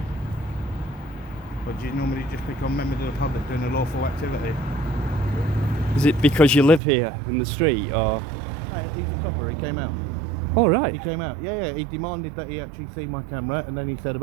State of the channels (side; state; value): left; drops out; at 6.8 s